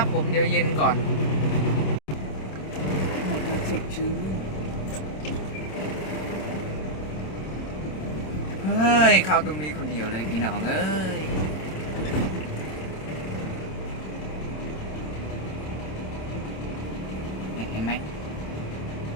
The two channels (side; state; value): right; late; 26 ms